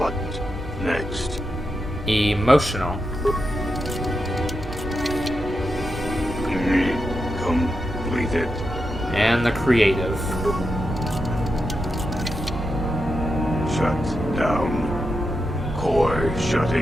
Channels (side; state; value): both; normal; correlation 0.87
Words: next? Emotional. Completed. And the creative. Shut down. Core